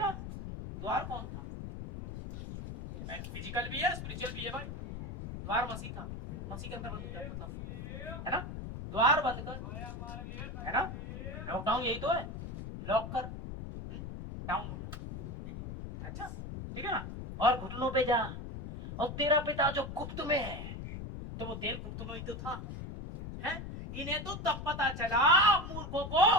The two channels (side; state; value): left; noise; rumble, 8 dB below the sound